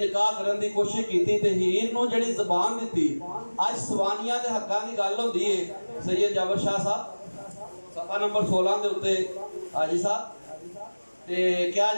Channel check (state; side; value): inverted; both; correlation -1.00